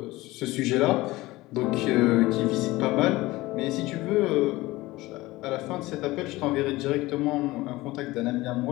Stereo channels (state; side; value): quieter; right; 19.4 dB